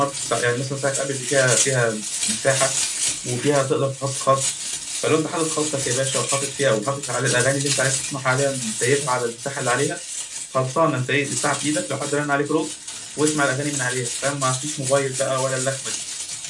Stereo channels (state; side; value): identical; both; correlation 1.00